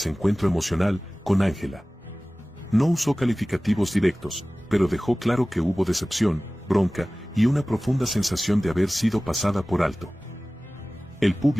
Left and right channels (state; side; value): normal; both; correlation 0.98